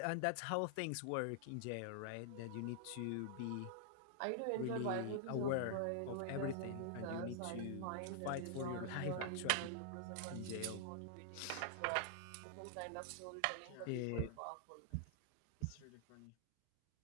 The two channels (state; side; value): different; both; correlation -0.01